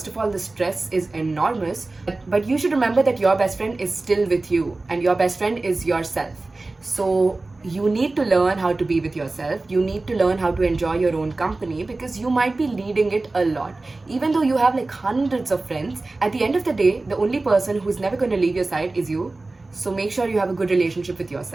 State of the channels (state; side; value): quieter; left; 3.2 dB